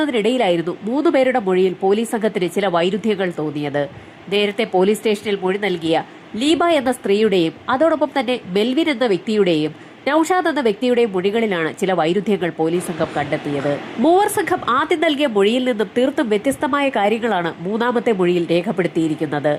3 പേരുടെ മൊഴിയിൽ പോലീസ് സംഘത്തിന് ചില വൈരുദ്ധ്യങ്ങൾ തോന്നിയത്. നേരത്തെ പോലീസ് സ്റ്റേഷനിൽ മൊഴി നൽകിയ ലീബ എന്ന സ്ത്രീയുടെയും അതോടൊപ്പം തന്നെ മെൽവിൻ എന്ന വ്യക്തിയുടെയും നൌഷാദ് എന്ന വ്യക്തിയുടെയും മൊഴികളിലാണ് ചില വൈരുദ്ധ്യങ്ങൾ പോലീസ് സംഘം കണ്ടെത്തിയത്. മൂവർ സംഘം ആദ്യം നൽകിയ മൊഴിയിൽ നിന്നും തീർത്തും വ്യത്യസ്തമായ കാര്യങ്ങളാണ് മൂന്നാമത്തെ മൊഴിയിൽ രേഖപ്പെടുത്തിയിരിക്കുന്നത്.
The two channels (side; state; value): both; identical; correlation 1.00